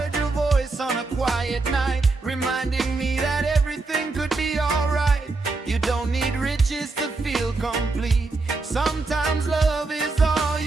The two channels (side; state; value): left; quieter; 3.6 dB